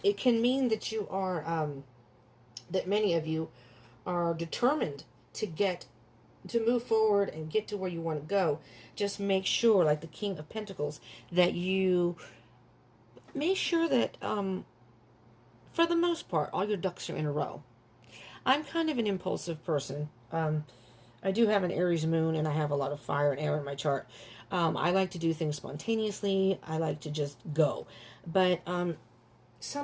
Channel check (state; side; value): identical; both; correlation 1.00